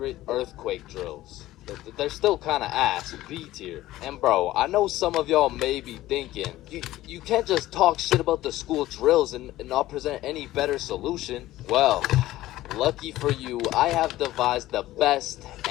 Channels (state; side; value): quieter; right; 15.8 dB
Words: earthquake drills. They're still kind of ass, B tier. And bro, I know some of y'all may be thinking, you can't just talk shit about the school drills and not present any better solution. Well, lucky for you, I have devised the best